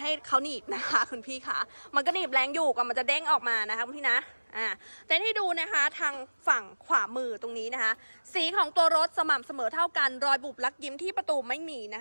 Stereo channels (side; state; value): both; inverted; correlation -1.00